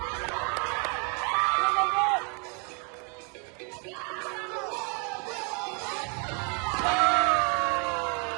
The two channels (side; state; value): left; quieter; 36.2 dB